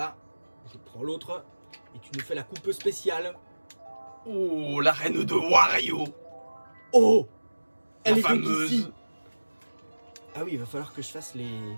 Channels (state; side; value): inverted; both; correlation -1.00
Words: je prends l'autre, et tu nous fais la coupe spéciale. Oh, la reine de Wario. Oh, elle La est donc fameuse. ici. Ah oui, il va falloir que je fasse les...